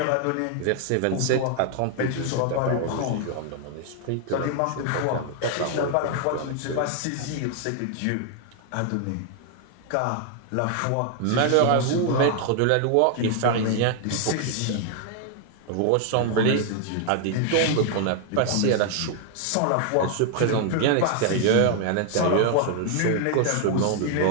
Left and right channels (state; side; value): different; both; correlation 0.00